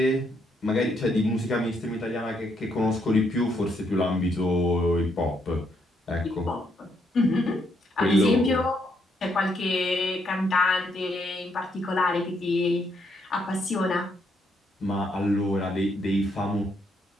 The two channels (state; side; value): normal; both; correlation 0.75